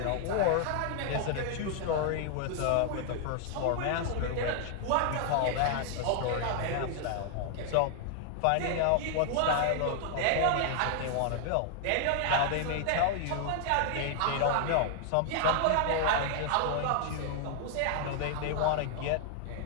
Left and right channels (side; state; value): both; different; correlation 0.00